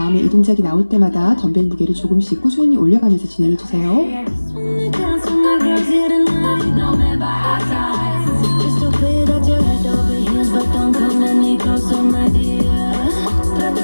이 동작이 나올 때마다 덤벨 무게를 조금씩 꾸준히 올려가면서 진행해주세요. I just wanna dance with my girls here tonight. No man by our sides. Just so clear that you're head over heels, but don't come any closer, my dear.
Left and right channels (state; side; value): inverted; both; correlation -1.00